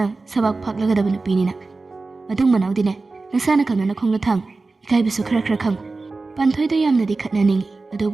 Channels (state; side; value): quieter; left; 3.7 dB